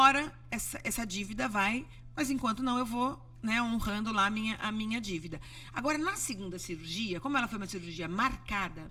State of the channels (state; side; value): identical; both; correlation 1.00